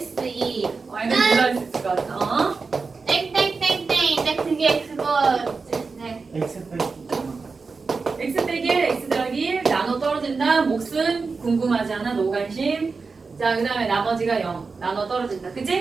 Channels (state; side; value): quieter; left; 4.5 dB